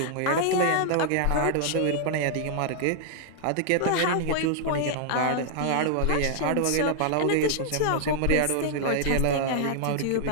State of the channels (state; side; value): different; both; correlation -0.01